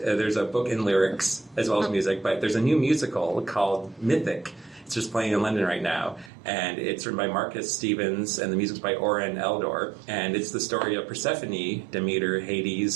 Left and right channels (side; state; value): left; drops out; at 6.3 s